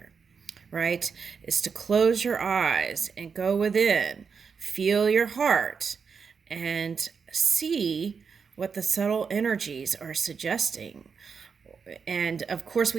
right? Is to close your eyes and go within, feel your heart, and see what the subtle energies are suggesting. And of course,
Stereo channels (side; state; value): left; quieter; 5.9 dB